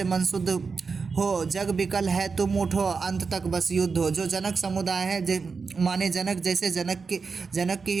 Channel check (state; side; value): quieter; left; 4.9 dB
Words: मन शुद्ध हो, जग विकल है तुम उठो, अंत तक बस युद्ध हो। जो जनक समुदाय है, माने जनक जैसे जनक की ही